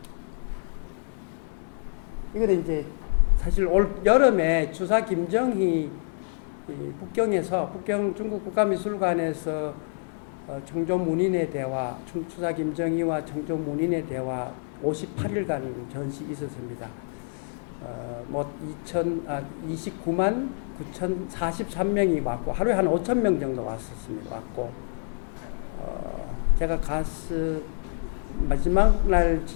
이거는 이제 사실 올 여름에 주사 김정희 북경 중국 국가미술관에서 청조문인의 대화, 주사 김정희와 청조문인의 대화 58일간 전시 있었습니다. 29만 9,043명이 왔고 하루에 한 5,000명 정도 왔었습니다. 왔고 제가 마지막 날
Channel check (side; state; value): right; silent; 60 dB below the other